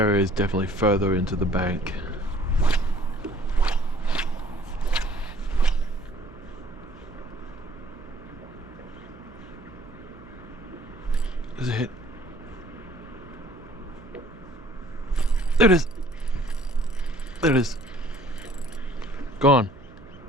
is definitely further into the bank. There's a hit. There it is. There it is. Gone.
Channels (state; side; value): noise; right; hum, 21 dB below the sound